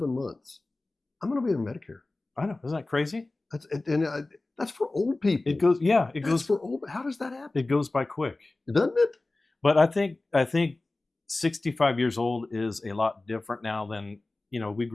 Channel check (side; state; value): right; quieter; 3.1 dB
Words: months, I'm going to be in Medicare. I know. Isn't that crazy? That's for old people. It goes for old. How does that happen? It goes by quick. Doesn't it? But I think 65 years old is a lot different now than, we